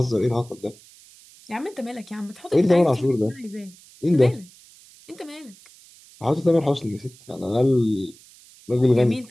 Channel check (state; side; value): noise; right; hiss, 24 dB below the sound